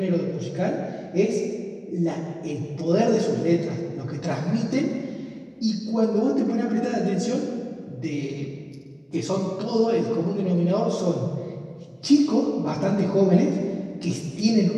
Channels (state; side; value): identical; both; correlation 1.00